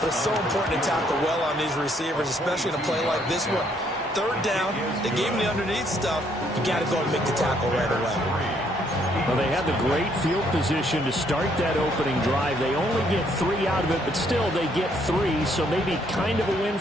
it's so important to tackle well on these receivers, especially in a play like this one. 3rd down, they gave him the underneath stuff. You got to go and make the tackle right away. Well, they had the great field position to start that opening drive. They only get 3 out of it, but still they get 3. So maybe kind of a win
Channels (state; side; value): normal; both; correlation 0.69